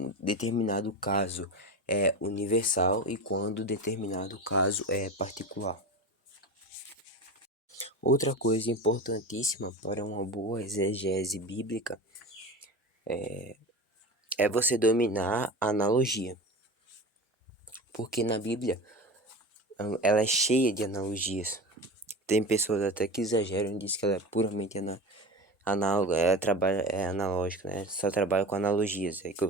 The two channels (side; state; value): both; normal; correlation 0.29